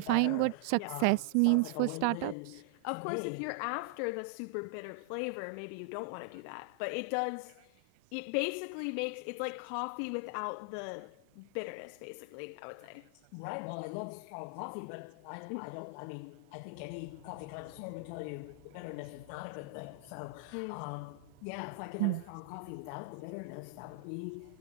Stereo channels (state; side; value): different; both; correlation -0.01